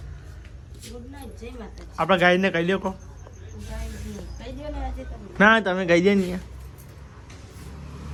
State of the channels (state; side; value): identical; both; correlation 1.00